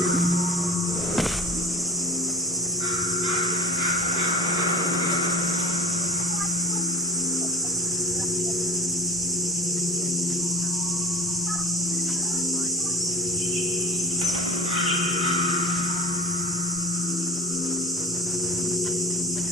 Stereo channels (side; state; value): both; normal; correlation 0.36